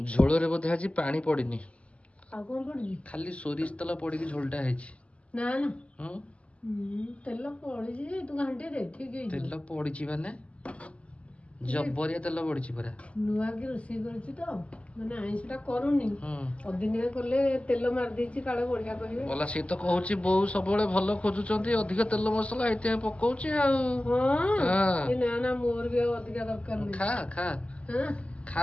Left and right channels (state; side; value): late; right; 0.062 ms